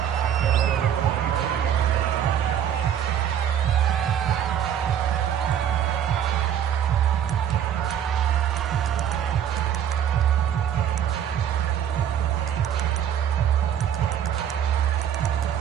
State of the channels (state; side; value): quieter; left; 9.4 dB